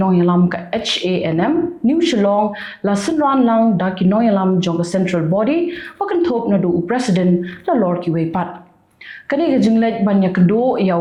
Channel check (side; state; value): both; identical; correlation 1.00